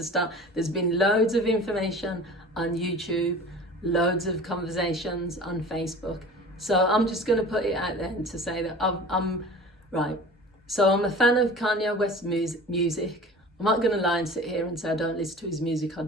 start. There's been loads of information on YouTube, loads of conversations on Facebook. So I'm just going to put it out there to say that I'm right. So I'm a fan of Kanye West's music. I'm not going to lie and sit here and say I don't listen to his music. I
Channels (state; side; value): normal; both; correlation 0.40